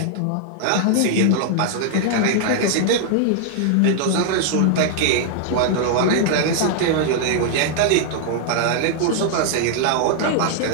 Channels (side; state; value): both; different; correlation 0.00